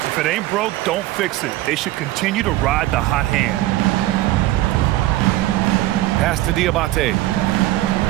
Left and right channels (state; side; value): quieter; left; 16.1 dB